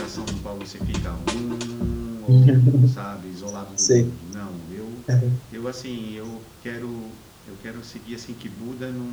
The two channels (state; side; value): identical; both; correlation 1.00